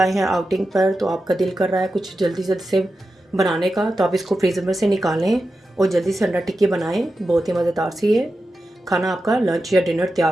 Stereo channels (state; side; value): normal; both; correlation 0.91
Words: हैं आउटिंग पर तो आपका दिल कर रहा है कुछ जल्दी जल्दी से बनाने का, तो आप इसको फ्रीज़र में से निकालें और जल्दी से अंडा टिक्की बनाएं। बहुत ही मज़ेदार सी है खाना, आपका लंच या डिनर